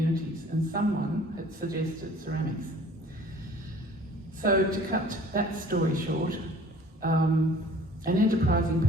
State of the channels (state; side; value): normal; both; correlation 0.50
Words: and someone had suggested ceramics. So to cut that story short, an enterprising